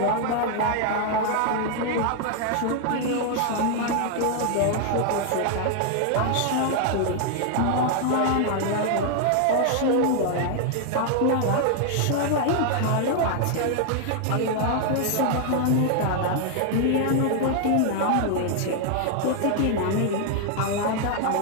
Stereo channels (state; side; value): different; both; correlation 0.00